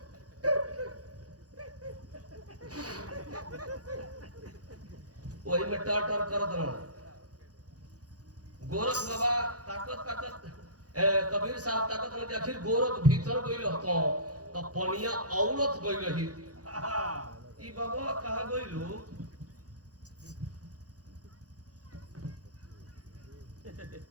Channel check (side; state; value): left; late; 0.67 ms